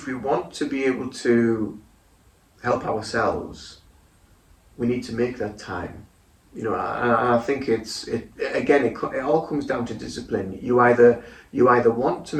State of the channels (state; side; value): identical; both; correlation 1.00